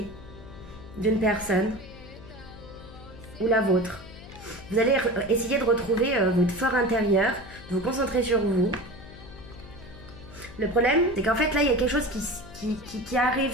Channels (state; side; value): noise; left; hum, 17 dB below the sound